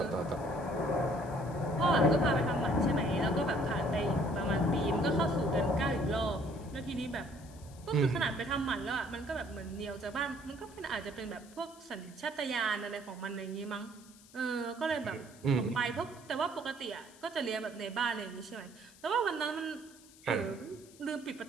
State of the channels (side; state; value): left; noise; hiss, 23 dB below the sound